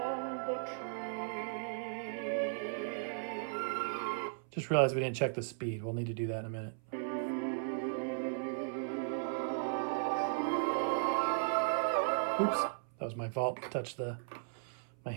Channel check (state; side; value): silent; left; 53 dB below the other